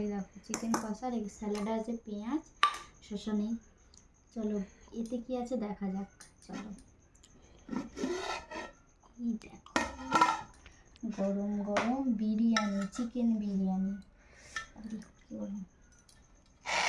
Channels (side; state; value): both; identical; correlation 1.00